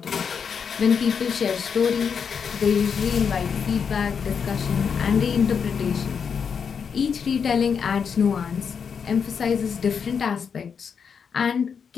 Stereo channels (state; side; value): quieter; right; 6.6 dB